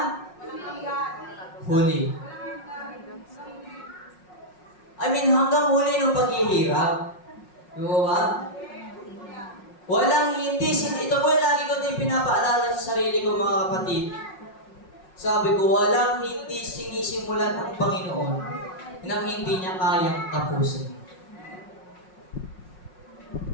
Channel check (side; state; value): right; late; 5.5 ms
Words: huli. Hanggang huli ng paghihirap. Di ba? Walang hindi, ito po lagi ko din pinapaalala sa sarili ko, mga kapatid. Sabi ko, walang hindi sinisimulan ng Panginoon nang hindi niya kayang tapusin.